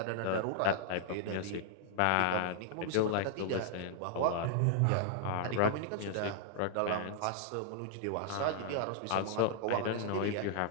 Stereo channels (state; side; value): different; both; correlation -0.01